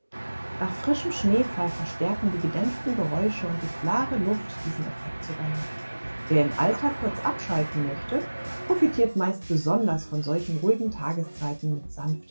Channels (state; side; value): inverted; both; correlation -1.00